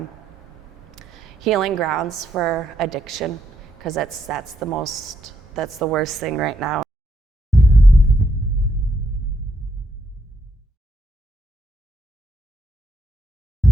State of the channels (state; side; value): normal; both; correlation 0.78